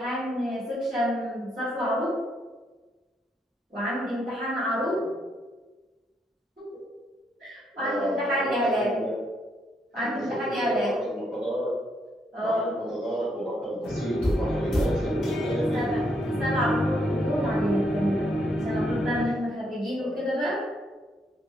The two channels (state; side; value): normal; both; correlation 0.75